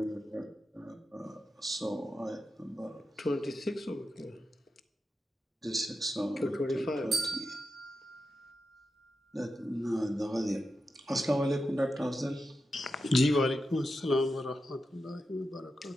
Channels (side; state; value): both; normal; correlation 0.89